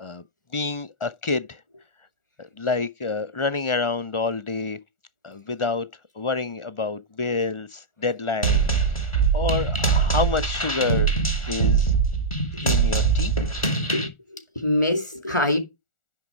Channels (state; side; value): late; right; 1.4 ms